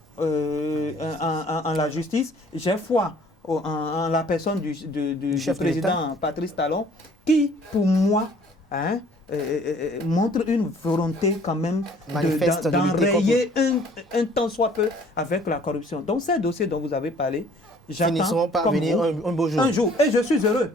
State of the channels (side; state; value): both; normal; correlation 0.56